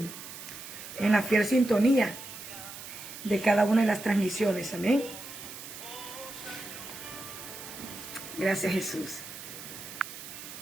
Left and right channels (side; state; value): right; noise; hiss, 12 dB below the sound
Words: en la fiel sintonía de cada una de las transmisiones. Amén. Gracias, Jesús.